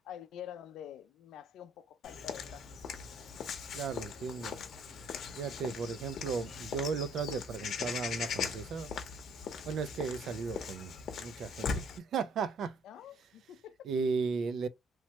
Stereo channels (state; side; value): normal; both; correlation 0.62